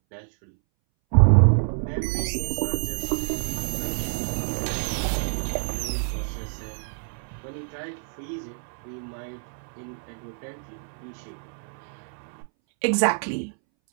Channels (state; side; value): silent; left; 60 dB below the other